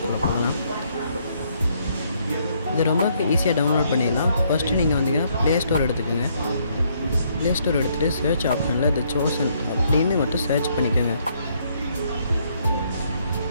போகலாம். இது ரொம்ப ஈஸியாக டவுன்லோட் பண்ணிடலாம். ஃபஸ்ட்டு நீங்கள் வந்தீங்கன்னா ப்ளே ஸ்டோர் எடுத்துக்கோங்க. ப்ளே ஸ்டோர் எடுத்துகிட்டு சர்ச் ஆப்ஷனில் த சோசன் அப்படின்னு மட்டும் சர்ச் பண்ணிக்கோங்க.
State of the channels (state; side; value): inverted; both; correlation -0.70